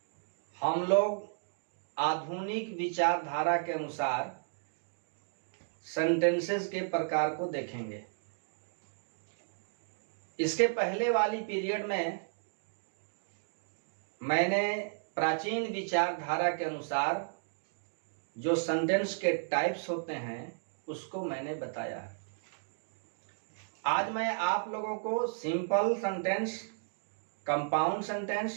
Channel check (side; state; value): left; silent; digital silence